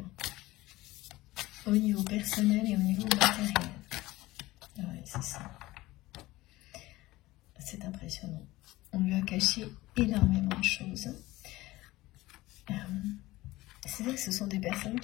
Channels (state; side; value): quieter; right; 18.5 dB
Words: au niveau personnel et au niveau matériel. Ouais, c'est ça. C'est impressionnant. On lui a caché énormément de choses. C'est vrai que ce sont des personnes